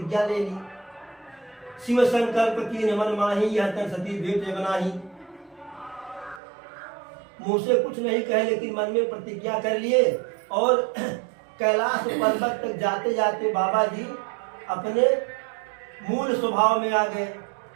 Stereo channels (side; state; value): left; drops out; at 6.4 s